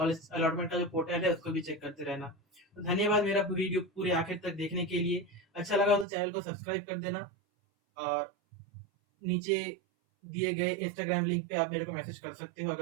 अलॉटमेंट का जो पोर्टल है उसको भी चेक करते रहना। तो धन्यवाद मेरा वीडियो पूरे आखिर तक देखने के लिए। अच्छा लगा तो चैनल को सब्सक्राइब कर देना, और नीचे दिए गए इंस्टाग्राम लिंक पे आप मेरे को मैसेज कर सकते हो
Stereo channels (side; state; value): left; drops out; at 6.1 s